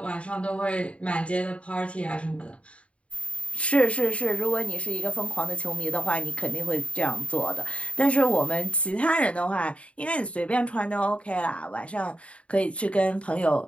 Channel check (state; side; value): late; right; 0.062 ms